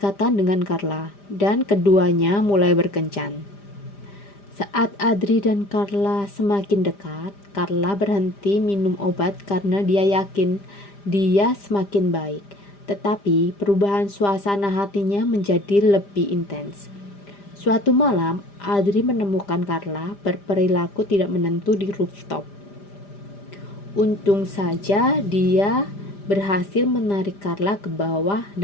dengan Carla, dan keduanya mulai berkencan. Saat Adri dan Carla semakin dekat, Carla berhenti minum obat karena dia yakin dia semakin baik. Tetapi perubahan suasana hatinya menjadi lebih intens. Suatu malam, Adri menemukan Carla berperilaku tidak menentu di rooftop. Untung saja dia berhasil menarik Carla ke bawah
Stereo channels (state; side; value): late; right; 5.0 ms